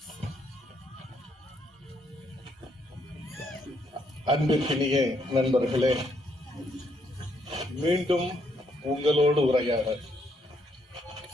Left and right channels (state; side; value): normal; both; correlation 0.73